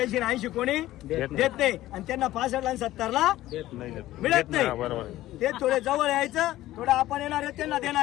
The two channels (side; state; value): right; quieter; 15.3 dB